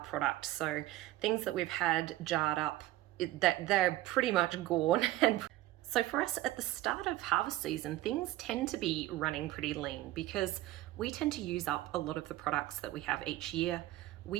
So things that we've had jarred up, that they're pretty much gone. And so for us at the start of harvest season, things tend to be running pretty lean because we tend to use up a lot of the products that we have each year.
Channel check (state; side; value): quieter; left; 16.1 dB